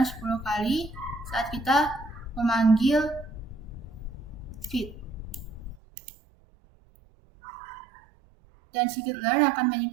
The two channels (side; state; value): left; drops out; at 5.8 s